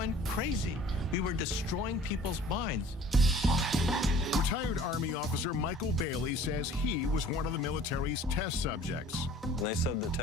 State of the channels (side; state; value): both; normal; correlation 0.49